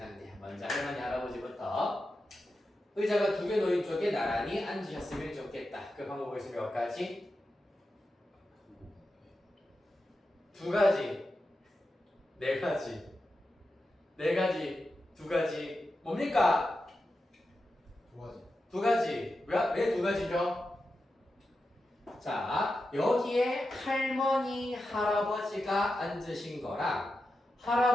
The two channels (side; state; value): both; normal; correlation 0.90